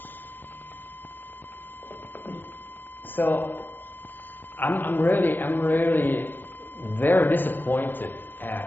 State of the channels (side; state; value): right; late; 0.091 ms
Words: I'm really very disappointed